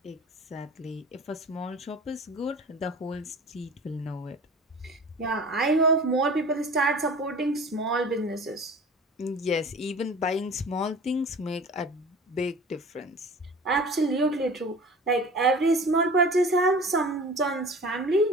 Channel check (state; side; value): normal; both; correlation 0.41